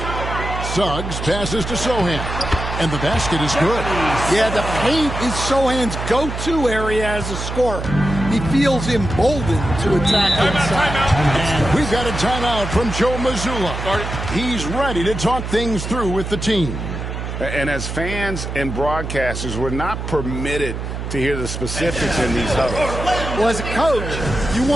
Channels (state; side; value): noise; right; hum, 5 dB below the sound